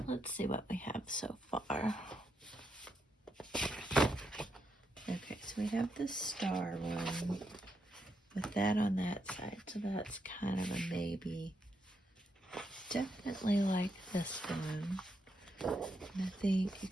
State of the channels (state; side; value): normal; both; correlation 0.81